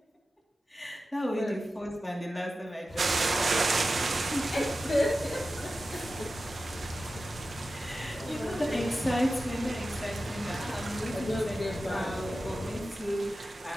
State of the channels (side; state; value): both; normal; correlation 0.93